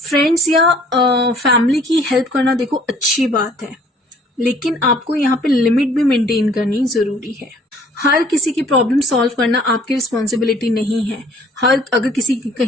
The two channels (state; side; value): normal; both; correlation 0.56